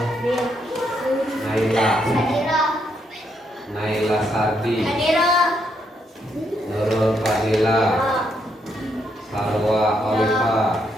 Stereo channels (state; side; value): normal; both; correlation 0.76